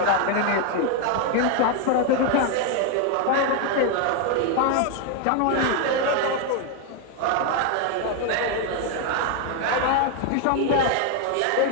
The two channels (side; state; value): both; different; correlation 0.01